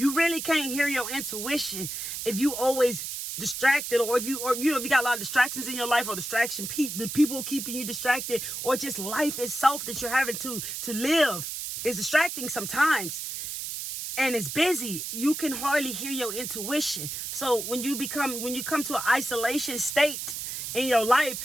really can't hear your intuition if you always distracted, or if you got a lot of distractions in your life, or the people keeping you distracted, or just life itself that you're having to live is distracting sometimes, and it's busy. You can hardly hear your intuition. So when you come to an isolation state in your life,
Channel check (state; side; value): noise; right; hiss, 5 dB below the sound